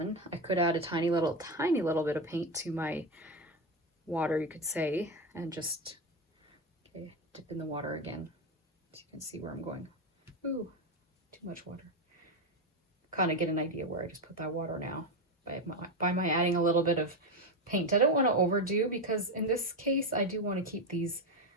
I could add a tiny little bit of paint to my water, you could say, and just dip in the water again so you can see where I'm going. Ooh, too much water. Kind of get an idea where I just put that water now by my adding a little bit of paint. I don't want to overdo, because in this case I do want to keep these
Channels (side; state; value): both; normal; correlation 0.13